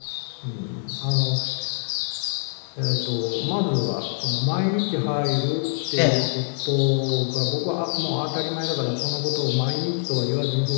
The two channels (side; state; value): right; silent; 62 dB below the other